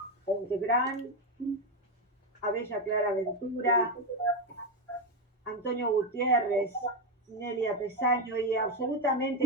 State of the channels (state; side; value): normal; both; correlation 0.10